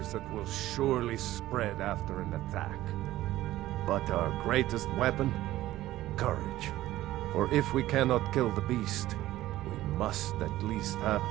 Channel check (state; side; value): quieter; left; 15.2 dB